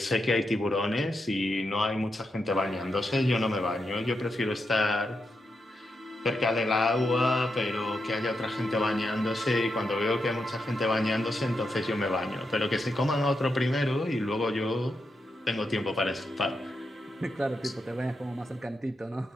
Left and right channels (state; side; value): normal; both; correlation 0.85